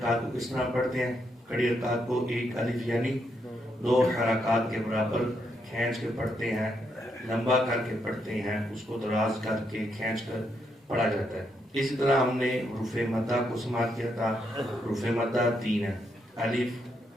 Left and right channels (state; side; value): normal; both; correlation 0.78